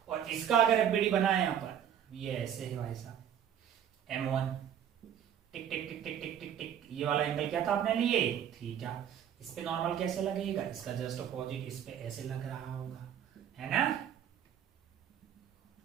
और इसका अगर एफबीडी बनाए यहाँ पर, ये ऐसे है भाई साहब, M1 टिक टिक टिक टिक टिक टिक टिक, ये वाला एंगल क्या था अपने लिए, थीटा। इस पे नॉर्मल कैसे लगेगा, इसका जस्ट अपोजिट इस पे ऐसे लग रहा होगा, है ना।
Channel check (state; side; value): quieter; left; 9.4 dB